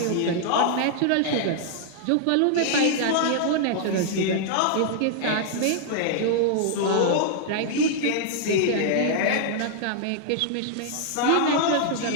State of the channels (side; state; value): both; different; correlation -0.01